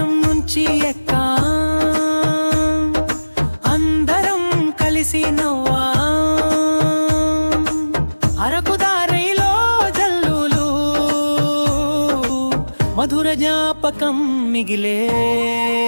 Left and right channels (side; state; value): both; inverted; correlation -1.00